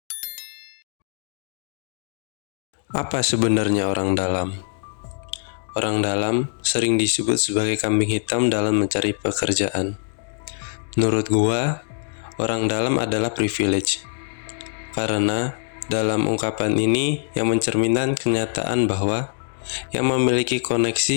Apa sebenarnya orang dalam? Orang dalam sering disebut sebagai kambing hitam dalam mencari pekerjaan. Menurut gua, orang dalam adalah privilege. Karena dalam ungkapan ini yang mencerminkan kenyataan bahwa yang memiliki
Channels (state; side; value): silent; right; digital silence